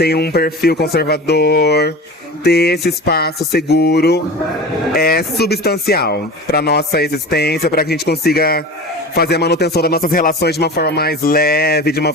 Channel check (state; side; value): normal; both; correlation 0.33